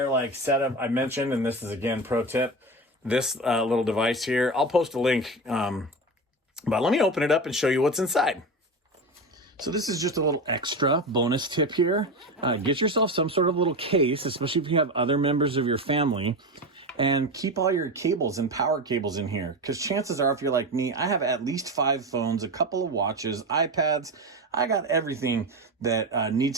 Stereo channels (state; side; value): normal; both; correlation 0.22